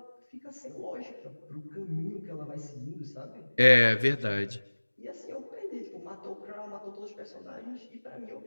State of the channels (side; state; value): both; inverted; correlation -1.00